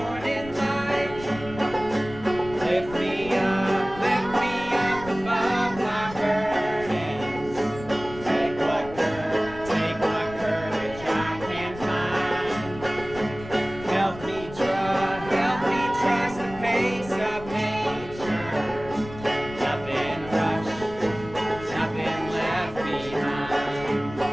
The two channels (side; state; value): left; noise; rumble, 15 dB below the sound